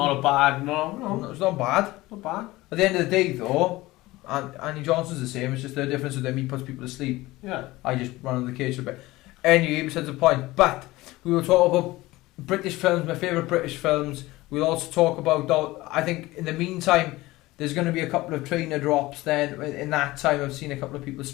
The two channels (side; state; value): right; quieter; 19.0 dB